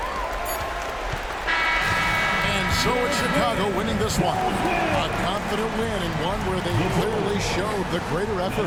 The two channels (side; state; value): both; identical; correlation 1.00